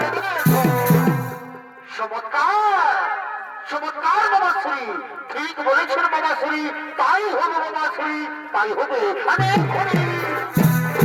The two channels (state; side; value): identical; both; correlation 1.00